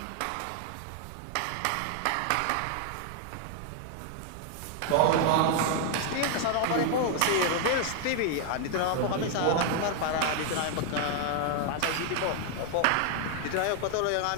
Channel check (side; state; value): both; different; correlation 0.00